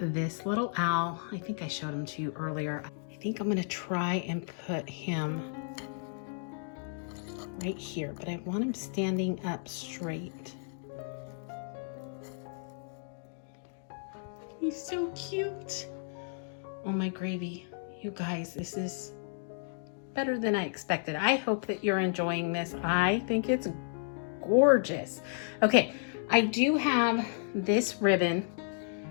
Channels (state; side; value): silent; right; digital silence